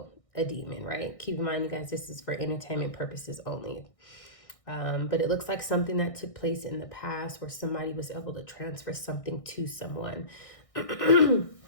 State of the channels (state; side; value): late; right; 1.6 ms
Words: a demon, right? Keep in mind, you guys, this is for entertainment purposes only. But it looks like something that took place in the past where somebody was able to transfer something to someone.